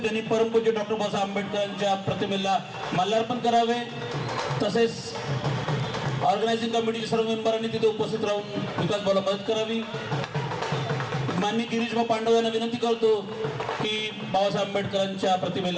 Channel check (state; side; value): identical; both; correlation 1.00